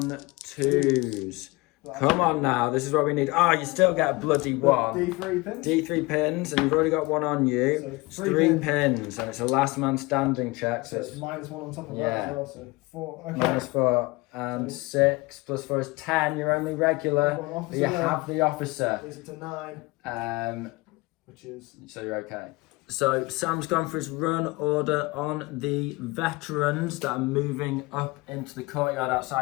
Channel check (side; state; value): right; quieter; 23.5 dB